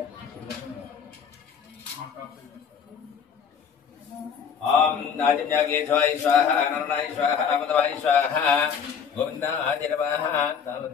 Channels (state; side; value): quieter; right; 7.0 dB